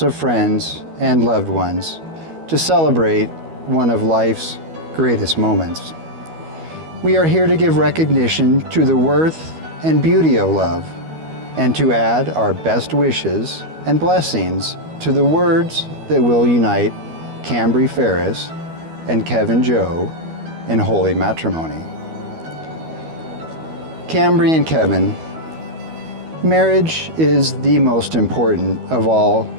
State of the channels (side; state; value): left; late; 12 ms